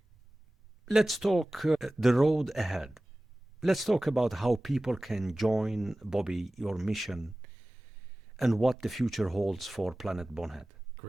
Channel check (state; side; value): normal; both; correlation 0.97